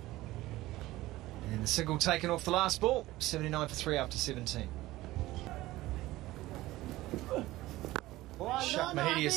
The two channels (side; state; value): left; quieter; 17.4 dB